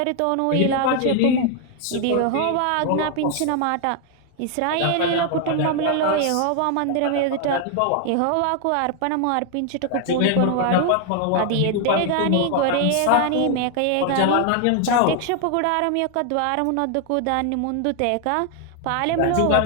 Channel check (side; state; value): both; different; correlation 0.00